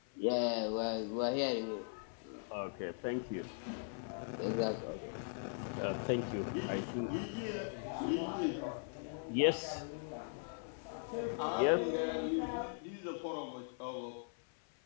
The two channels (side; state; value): right; silent; 51 dB below the other